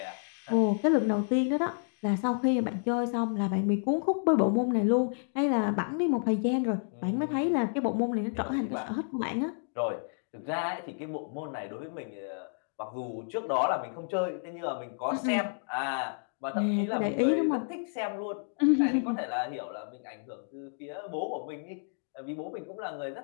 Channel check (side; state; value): right; silent; digital silence